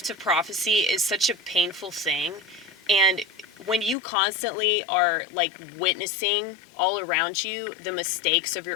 of prophecy is such a painful thing. And when you constantly are, like, witnessing all around you the mistakes of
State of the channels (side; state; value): right; drops out; at 4.0 s